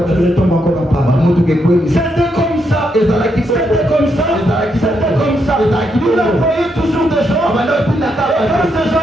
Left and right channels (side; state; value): both; normal; correlation 0.79